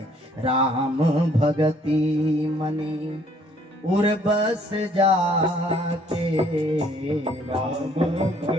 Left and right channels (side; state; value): both; normal; correlation 0.62